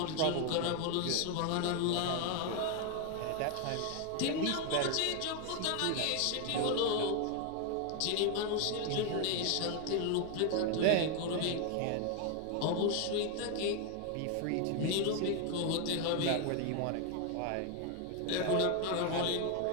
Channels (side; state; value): both; different; correlation 0.01